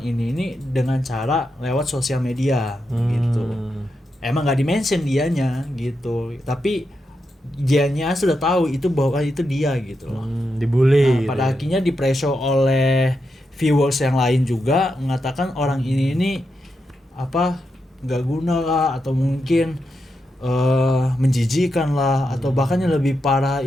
ini dengan cara lewat sosial media gitu. Emang nggak dimention dianya gitu, tapi dianya sudah tahu itu bahwa itu dia gitu loh. Dibully. Pada akhirnya di-pressure oleh viewers yang lain juga mengatakan orang ini apa nggak guna lah, atau mungkin menjijikan lah, atau bahkan yang lebih parah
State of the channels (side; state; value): both; normal; correlation 0.85